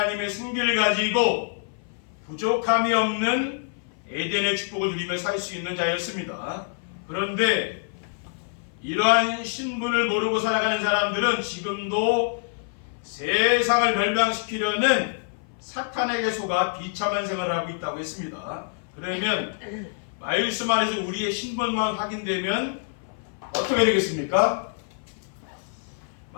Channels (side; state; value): right; silent; 56 dB below the other